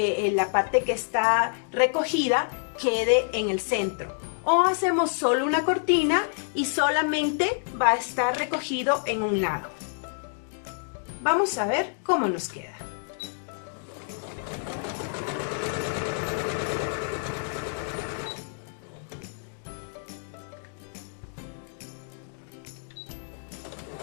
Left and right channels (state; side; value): silent; right; digital silence